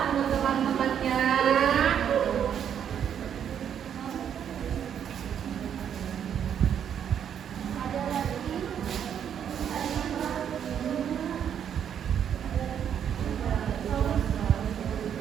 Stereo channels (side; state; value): left; quieter; 8.8 dB